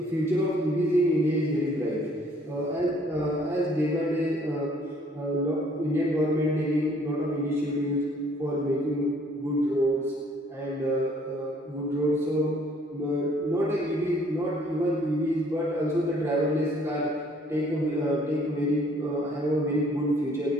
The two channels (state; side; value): normal; both; correlation 0.60